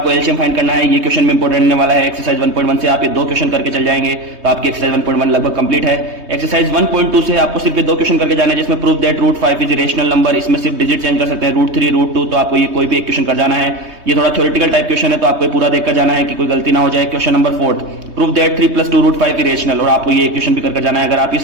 एलसीएम फाइंड करना है। ये क्वेश्चन में इंपॉर्टेंट रहने वाला है। एक्सरसाइज 1.1 से आप ये दो क्वेश्चन करके चल जाएंगे तो आपकी एक्सरसाइज 1.1 लगभग कंप्लीट है। एक्सरसाइज 1.2 से आपको सिर्फ ये दो क्वेश्चन करके जाना है, जिसमें prove that √5 is rational number. इसमें सिर्फ डिजिट चेंज कर सकते हैं, √3 √2, तो आपको ये कोई भी एक क्वेश्चन कर जाना है। ये थोड़ा थ्योरेटिकल टाइप क्वेश्चन है तो आपको पूरा देखकर जाना है कि कोई गलती ना हो जाए। Question number 4, prove that 3 + 2 √5 irrational, और आपको ये क्वेश्चन भी करके जाना है। अगर आप ये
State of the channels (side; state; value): left; late; 3.2 ms